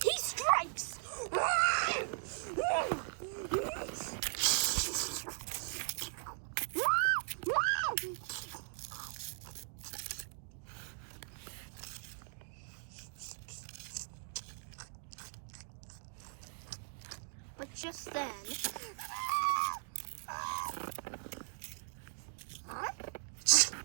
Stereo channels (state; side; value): silent; left; digital silence